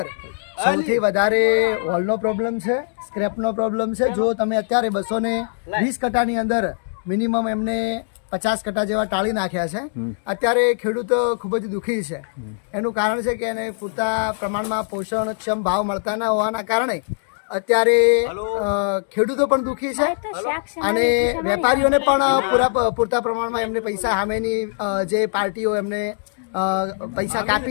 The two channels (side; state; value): right; silent; digital silence